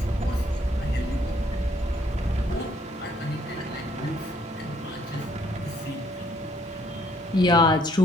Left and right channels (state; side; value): normal; both; correlation 0.66